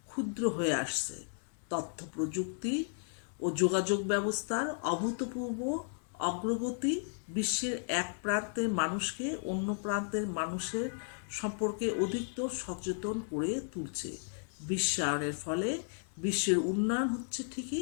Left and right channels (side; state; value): right; silent; 55 dB below the other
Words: ক্ষুদ্র হয়ে আসছে। তথ্য প্রযুক্তি ও যোগাযোগ ব্যবস্থার অভূতপূর্ব অগ্রগতি বিশ্বের এক প্রান্তের মানুষকে অন্য প্রান্তের মানুষের সম্পর্কে অধিকতর সচেতন করে তুলছে। বিশ্বায়নের ফলে বিশ্বের উন্নয়ন হচ্ছে